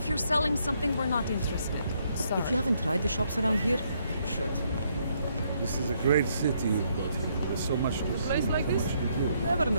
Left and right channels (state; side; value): inverted; both; correlation -0.72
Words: you're selling something, we're not interested. Sorry. If you haven't tried the shops around here, you should. This is a great city you've got here. There's so much to A see, place like so this, much to do. you never